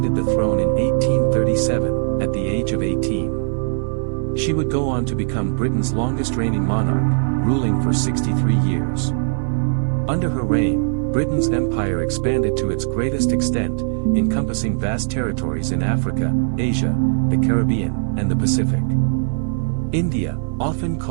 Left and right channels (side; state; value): left; silent; 66 dB below the other